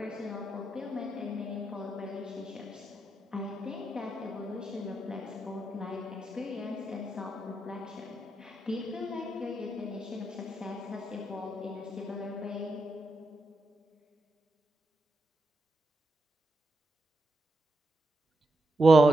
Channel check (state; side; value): normal; both; correlation 0.84